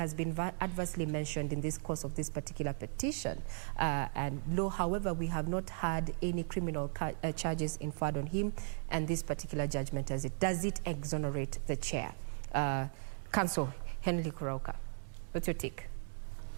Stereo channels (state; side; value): silent; left; digital silence